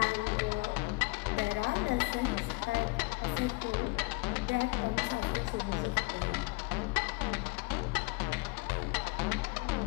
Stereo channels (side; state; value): right; quieter; 27.5 dB